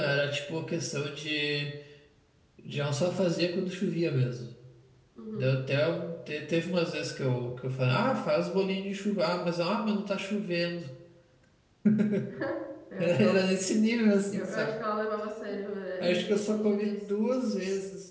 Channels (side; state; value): both; identical; correlation 1.00